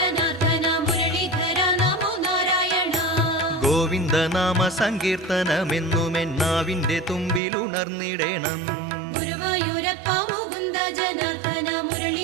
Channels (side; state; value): left; drops out; at 7.4 s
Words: മുരളീധര നമോ നാരായണ. ഗോവിന്ദനാമ സങ്കീർത്തനമെന്നുമെന്നാവിന്റെ തുമ്പിലുണർന്നിടേണം. ഗുരുവായൂരപ്പ മുകുന്ദ ജനാർദ്ദന